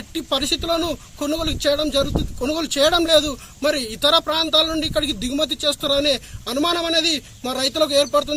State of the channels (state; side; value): identical; both; correlation 1.00